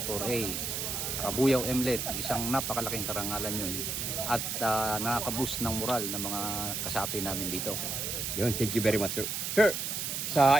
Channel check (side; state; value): right; noise; hiss, 2 dB below the sound